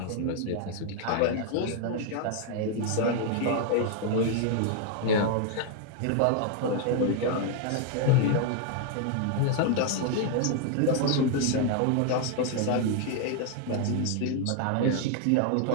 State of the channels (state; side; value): different; both; correlation 0.00